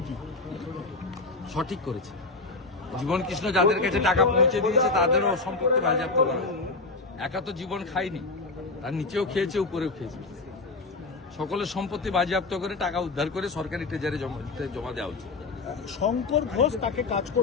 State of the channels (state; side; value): quieter; right; 3.6 dB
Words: সঠিক করেছে। জীবন কৃষ্ণ যাদের কাছে টাকা পৌঁছে দিয়েছে তাদেরও সম্পত্তি বাজেয়াপ্ত করা। একা তো জীবন খায়নি, তার নিচেও খেয়েছে, উপরেও খেয়েছে। সকলের সম্পত্তি বাজেয়াপ্ত করে টাকা উদ্ধার করে সরকারি ট্রেজারে জমা দেওয়া উচিত। শঙ্কর ঘোষ তাকে কাজ